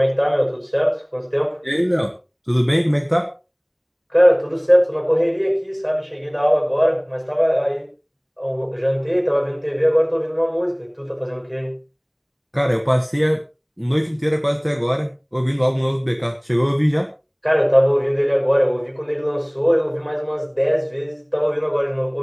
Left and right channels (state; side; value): identical; both; correlation 1.00